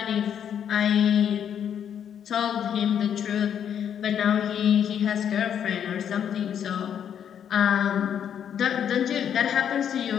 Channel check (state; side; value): quieter; right; 8.8 dB